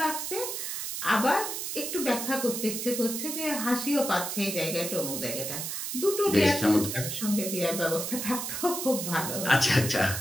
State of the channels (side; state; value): right; noise; hiss, 4 dB below the sound